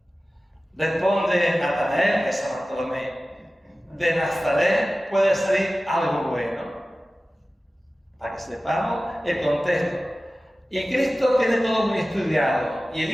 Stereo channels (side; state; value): both; normal; correlation 0.96